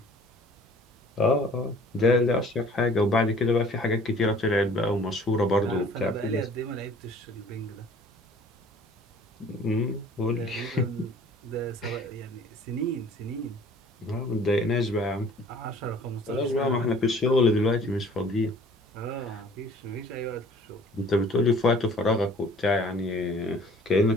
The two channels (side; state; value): both; normal; correlation 0.52